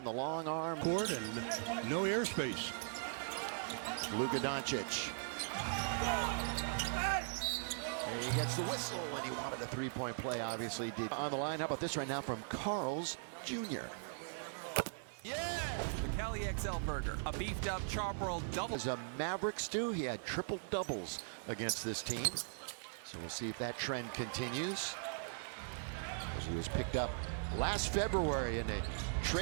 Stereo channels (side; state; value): left; silent; 51 dB below the other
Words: the long arm. Court and no airspace. Luka Doncic. And he gets the whistle, and he wanted a 3-point play, obviously did. On the line, how about this right now from Carl's Jr. Yeah! The Cali XL Burger, a beefed up charbroiled double. As a Maverick stew, he had triple doubles against this team. So we'll see if that trend continues. As he was picked up last February in a